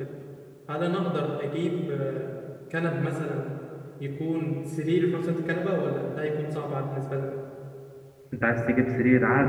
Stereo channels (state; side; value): identical; both; correlation 1.00